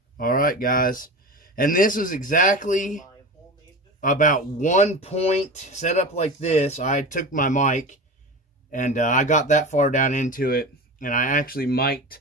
alright guys, and this is exactly about 1 point set up like this. I took my mic and I got that far down into it, and I actually mic'd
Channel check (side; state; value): both; normal; correlation 0.29